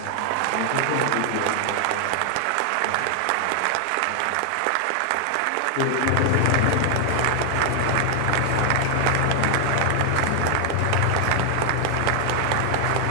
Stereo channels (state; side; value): different; both; correlation 0.00